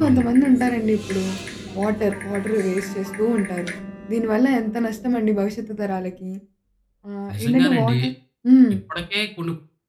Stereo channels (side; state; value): both; identical; correlation 1.00